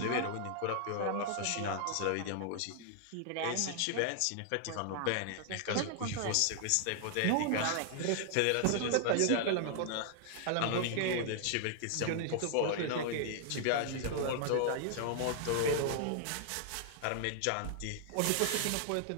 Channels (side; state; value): both; different; correlation 0.00